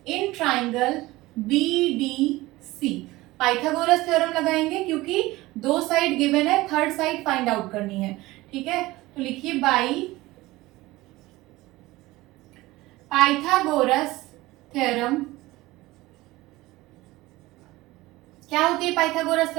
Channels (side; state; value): left; quieter; 19.1 dB